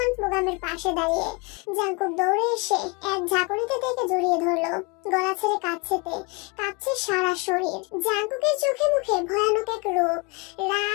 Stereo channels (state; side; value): quieter; right; 30.2 dB